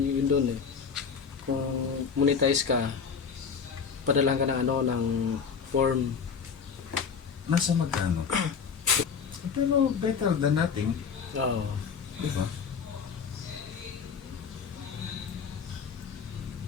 doon eh. Kung monetize ka, padalang ka ng ano, ng form. Nasa magkano? Pero better than nothing. Oo. Diba?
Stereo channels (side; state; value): right; quieter; 6.1 dB